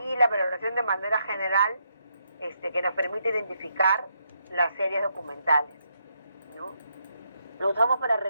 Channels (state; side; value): inverted; both; correlation -0.78